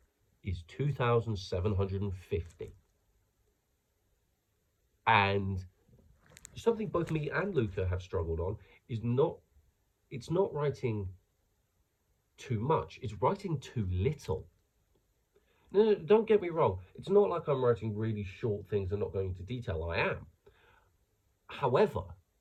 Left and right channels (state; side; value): identical; both; correlation 1.00